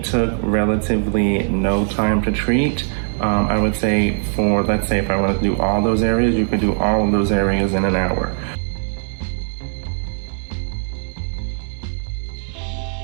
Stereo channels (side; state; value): left; silent; digital silence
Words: took relatively no time to treat. I would say let's say if I want to do all those areas, you could do all of those areas in an hour.